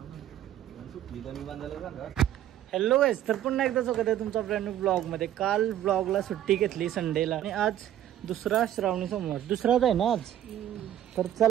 हॅलो गाईज, तर पुन्हा एकदा स्वागत आहे तुमचा ब्रँड न्यू ब्लॉगमध्ये. काल ब्लॉगला सुट्टी घेतली संडेला आणि आज दुसरा श्रावणी सोमवार, दुसराच आहे ना आज. तर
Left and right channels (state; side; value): quieter; left; 11.8 dB